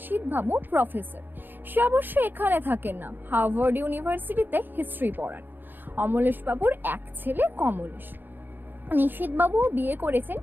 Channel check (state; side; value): late; left; 0.094 ms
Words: প্রফেসর। সে অবশ্য এখানে থাকেন না, হার্ভার্ড ইউনিভার্সিটিতে হিস্ট্রি পড়ান। অমলেশবাবুর এক ছেলে কমলেশ। নিশীথবাবু বিয়ে করেছেন,